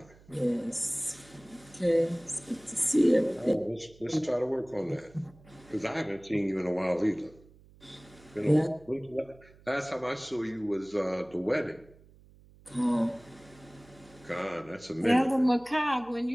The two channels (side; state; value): right; noise; hum, 25 dB below the sound